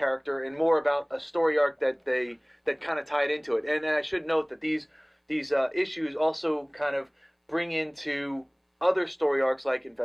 and more about a story arc that kind of tied into it. And I should note that these issues also kind of bring into other story arcs like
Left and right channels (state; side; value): identical; both; correlation 1.00